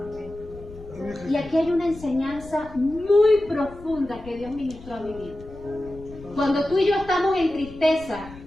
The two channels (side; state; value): left; noise; rumble, 18 dB below the sound